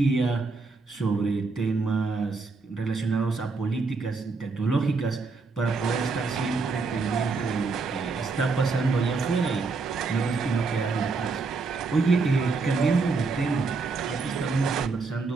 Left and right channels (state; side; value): quieter; left; 4.2 dB